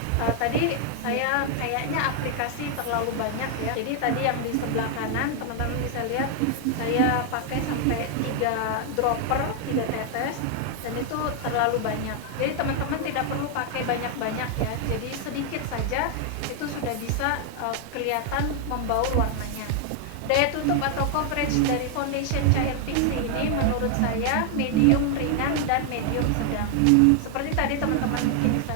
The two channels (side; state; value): both; different; correlation 0.00